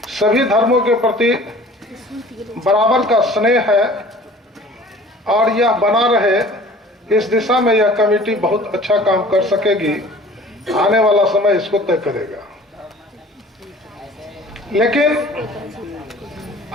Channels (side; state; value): both; normal; correlation 0.47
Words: सभी धर्मों के प्रति बराबर का स्नेह है और यह बना रहे, इस दिशा में यह कमेटी बहुत अच्छा काम कर सकेगी। आने वाला समय इसको तय करेगा। लेकिन